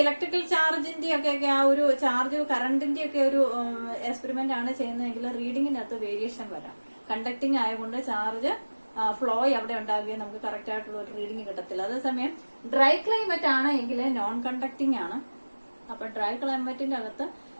ഇലക്ട്രിക്കൽ ചാർജിന്റെ ഒക്കെ ആ ഒരു ചാർജ് കറണ്ടിന്റെ ഒക്കെ ഒരു എക്സ്പെരിമെന്റ് ആണ് ചെയ്യുന്നതെങ്കിൽ റീഡിങ്ങിനകത്ത് വേരിയേഷൻ വരാം. കണ്ടക്ടിങ് ആയതുകൊണ്ട് ചാർജ് ഫ്ലോ അവിടെ ഉണ്ടാകുകയും നമുക്ക് കറക്റ്റ് ആയിട്ടുള്ള ഒരു റീഡിങ് കിട്ടത്തില്ല. അതേസമയം ഡ്രൈ ക്ലൈമറ്റ് ആണ് എങ്കിൽ നോൺ കണ്ടക്ടിങ് ആണ്. അപ്പൊ ഡ്രൈ ക്ലൈമറ്റിന്റെ അകത്ത്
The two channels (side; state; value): both; inverted; correlation -1.00